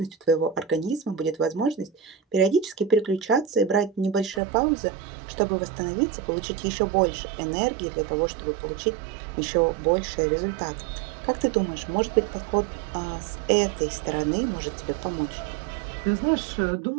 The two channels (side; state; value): left; drops out; at 4.4 s